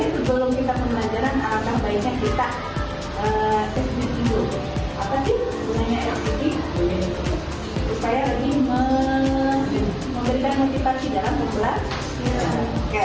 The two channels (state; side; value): identical; both; correlation 1.00